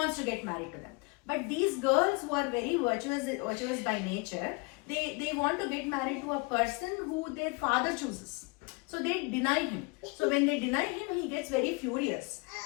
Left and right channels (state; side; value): quieter; right; 28.6 dB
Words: to get married to them. But these girls who are very virtuous by nature, they want to get married to a person who their father chooses. So they deny him. So when they deny him, he gets very furious,